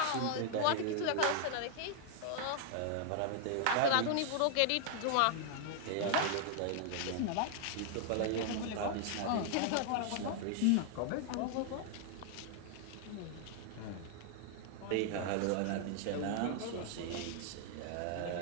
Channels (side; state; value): both; different; correlation 0.00